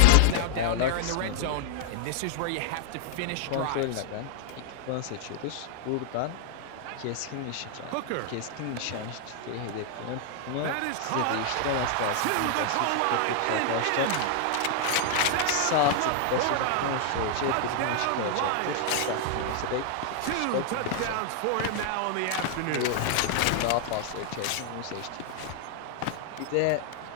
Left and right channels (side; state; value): both; different; correlation 0.00